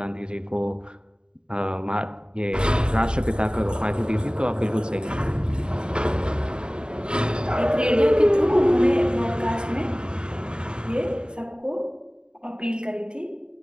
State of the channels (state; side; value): late; left; 0.049 ms